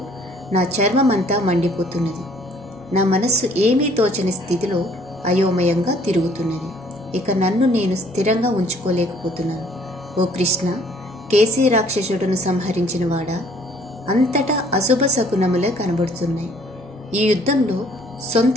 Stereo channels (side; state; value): both; normal; correlation 0.59